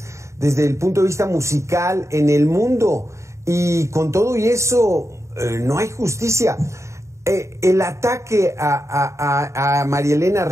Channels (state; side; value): late; left; 0.14 ms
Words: desde el punto de vista musical en el mundo, y con todo y eso no hay justicia. El ataque a María Elena